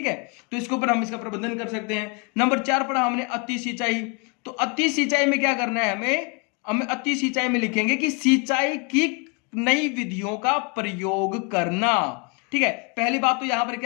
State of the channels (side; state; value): right; quieter; 33.1 dB